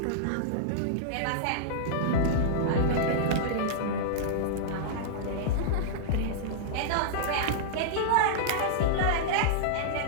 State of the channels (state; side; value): different; both; correlation -0.02